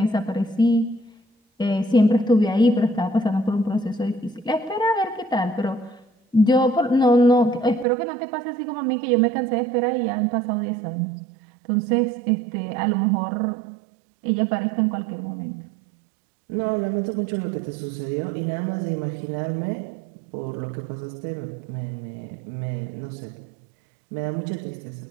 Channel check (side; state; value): left; drops out; at 7.9 s